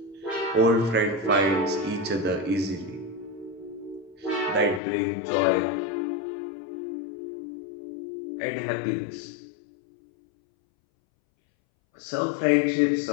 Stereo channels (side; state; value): right; drops out; at 4.8 s